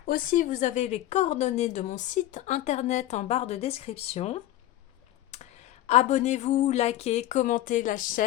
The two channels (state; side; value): quieter; right; 14.2 dB